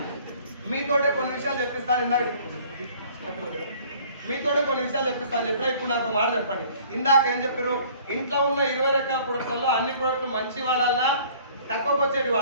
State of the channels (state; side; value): inverted; both; correlation -0.53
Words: మీతోటే కొన్ని విషయాలు చెప్పిస్తాను. మీతోటే కొన్ని విషయాలు చెప్పిస్తాను చెప్పినా. ఇప్పుడు నాకు మాట చెప్పండి. ఇందాక ఏం చెప్పారు? ఇంట్లో ఉన్న 20 రకాల ప్రొడక్ట్లలో అన్ని ప్రొడక్ట్లు మంచి వాడాలా, తక్కువకి వచ్చేటి